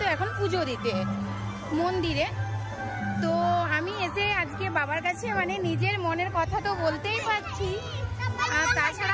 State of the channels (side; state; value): both; identical; correlation 1.00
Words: এখন পুজো দিতে মন্দিরে। তো আমি এসে আজকে বাবার কাছে মানে নিজের মনের কথা তো বলতেই পারছি, আর